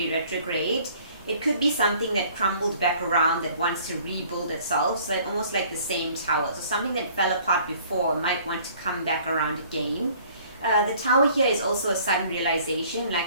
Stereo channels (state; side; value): inverted; both; correlation -0.55